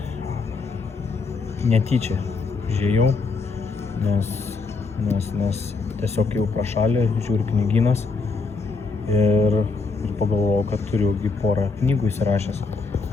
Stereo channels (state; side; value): quieter; right; 4.2 dB